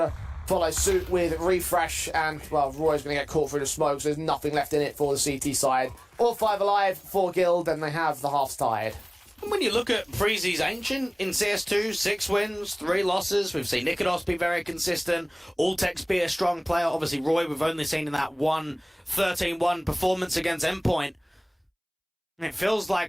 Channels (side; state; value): both; identical; correlation 1.00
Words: follow suit with Refresh, and, well, Roy's going to get caught through the smoke, so there's nothing left in it for the CT side. All 5 alive for Guild, and they have the halves tied. And when you look at Preezy's Ancient in CS2, 6 wins, 3 losses. We've seen Nikodos be very consistent. Ultex be a strong player. Obviously, Roy, we've only seen in that 13-1 performance against Endpoint. And it feels